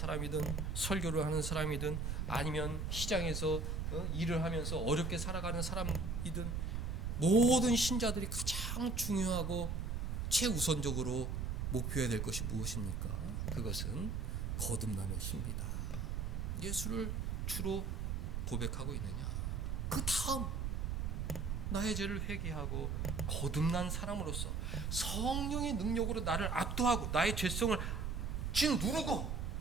설교를 하는 사람이든 아니면 시장에서 일을 하면서 어렵게 살아가는 사람이든 모든 신자들이 가장 중요하고 최우선적으로 목표해야 될 것이 무엇입니까? 그것은 거듭남의 신비다. 예수를 주로 고백하고 있느냐? 그 다음 나의 죄를 회개하고 거듭난 사람으로서 성령의 능력으로 나를 압도하고 나의 죄성을 짓누르고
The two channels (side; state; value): right; noise; rumble, 2 dB below the sound